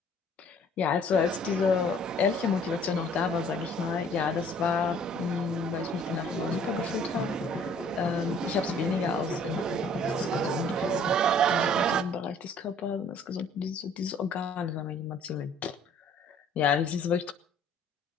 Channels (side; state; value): both; normal; correlation 0.56